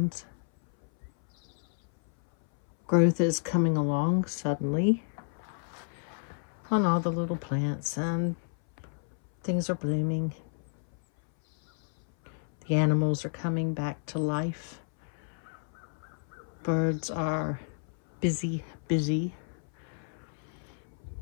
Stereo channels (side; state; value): right; silent; 57 dB below the other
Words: Growth is coming along suddenly on all the little plants, and things are blooming. The animals are coming back to life. Birds are busy.